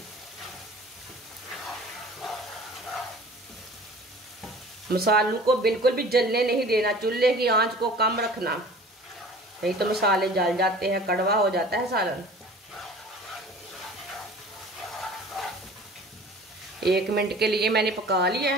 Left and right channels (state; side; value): normal; both; correlation 0.44